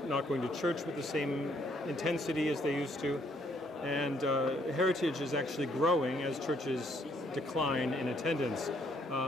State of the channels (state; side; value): normal; both; correlation 0.68